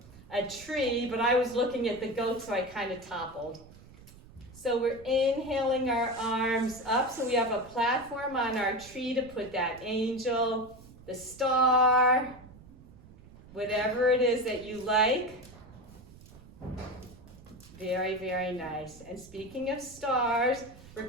a tree, but I was looking at the goat, so I kind of toppled. So we're inhaling our arms up, so we have a platform on our tree to put that angel, the star, whatever it is that you like. Very, very nice. And speaking of stars, we're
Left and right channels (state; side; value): noise; right; rumble, 21 dB below the sound